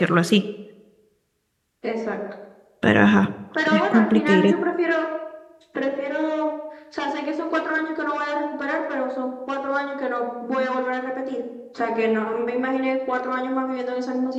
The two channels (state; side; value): identical; both; correlation 1.00